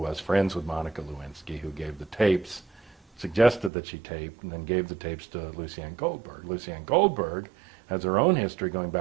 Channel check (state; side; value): drops out; left; at 3.7 s